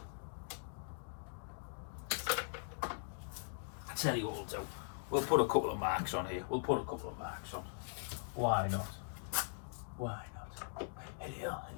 I tell you what we'll do. We'll put a couple of marks on here. Why not? Why not? Here,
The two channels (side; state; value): right; silent; digital silence